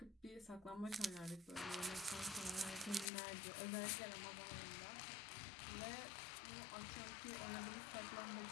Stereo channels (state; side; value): drops out; right; at 3.1 s